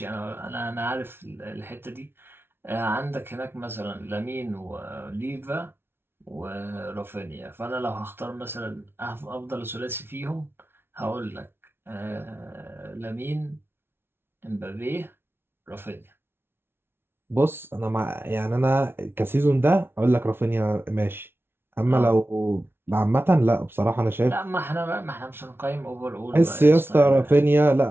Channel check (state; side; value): late; left; 0.11 ms